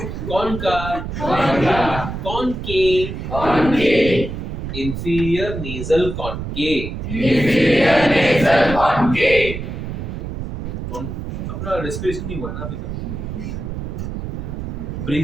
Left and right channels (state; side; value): noise; right; rumble, 6 dB below the sound